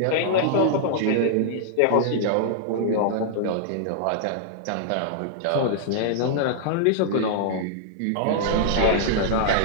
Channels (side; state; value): both; different; correlation -0.01